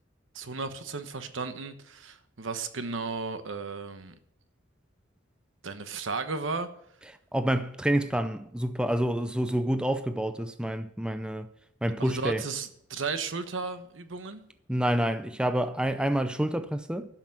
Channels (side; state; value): both; normal; correlation 0.73